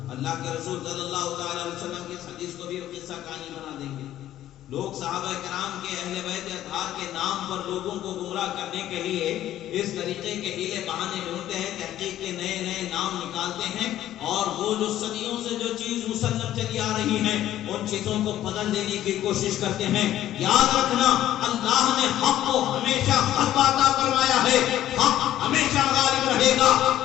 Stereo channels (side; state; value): right; quieter; 12.8 dB